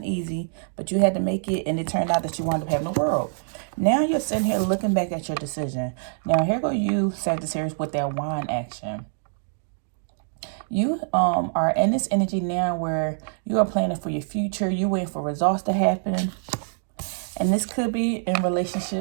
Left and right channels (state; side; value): silent; left; digital silence